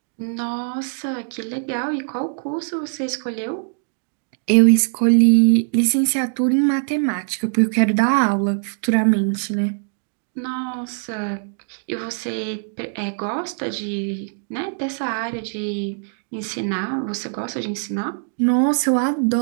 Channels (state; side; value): silent; left; digital silence